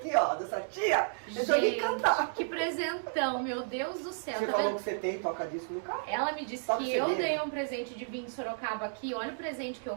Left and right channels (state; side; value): silent; left; digital silence